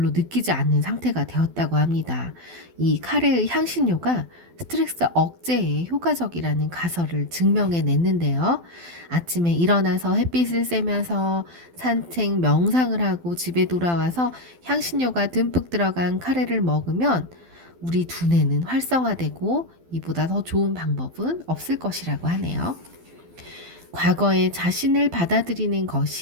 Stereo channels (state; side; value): late; left; 12 ms